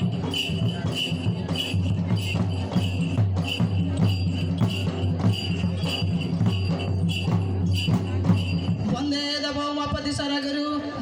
वन्दे देवोमपति सरगुरु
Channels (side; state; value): both; identical; correlation 1.00